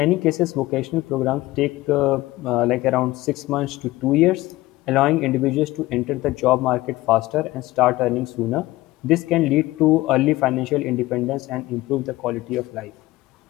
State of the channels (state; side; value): quieter; right; 18.4 dB